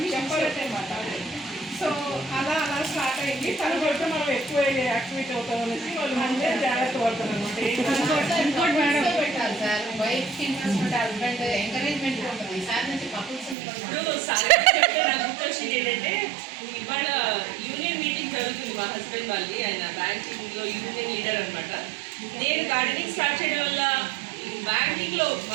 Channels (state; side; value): drops out; left; at 13.6 s